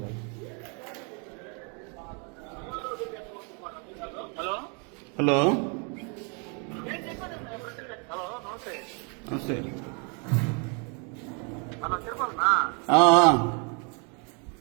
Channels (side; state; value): left; quieter; 36.1 dB